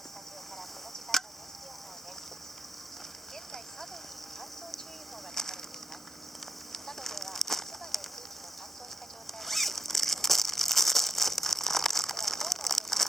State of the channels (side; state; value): both; normal; correlation 0.84